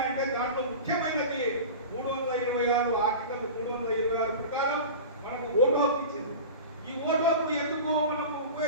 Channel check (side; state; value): both; inverted; correlation -0.32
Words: అంటే దాంట్లో ముఖ్యమైనది 326 ఆర్టికల్ 326 ప్రకారం మనకు ఓటు హక్కు ఇచ్చింది. ఈ ఓటు హక్కు ఎందుకు మనం